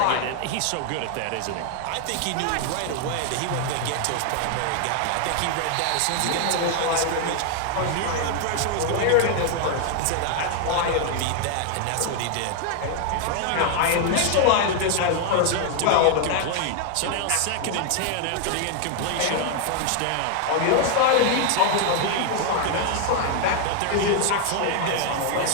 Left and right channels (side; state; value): both; different; correlation 0.00